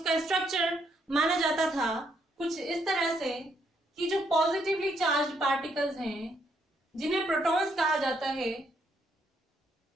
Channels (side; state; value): both; normal; correlation 0.73